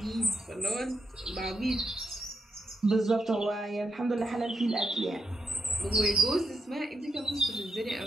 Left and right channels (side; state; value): both; normal; correlation 0.82